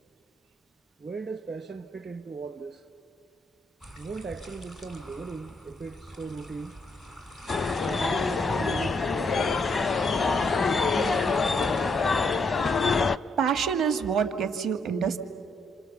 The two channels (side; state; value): both; normal; correlation 0.73